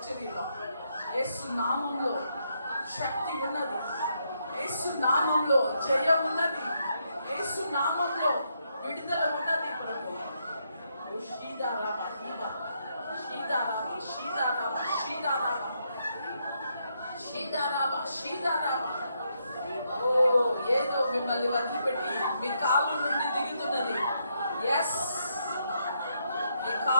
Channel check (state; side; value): inverted; both; correlation -0.78